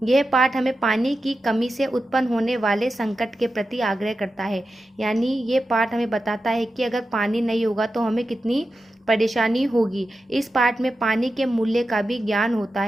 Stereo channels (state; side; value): normal; both; correlation 0.91